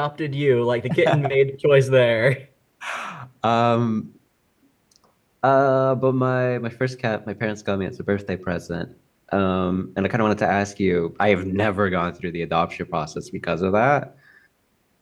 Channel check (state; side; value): identical; both; correlation 1.00